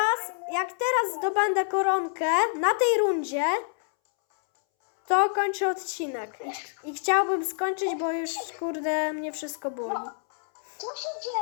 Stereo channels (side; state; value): right; silent; 60 dB below the other